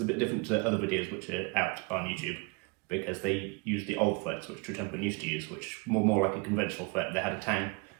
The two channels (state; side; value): quieter; left; 29.1 dB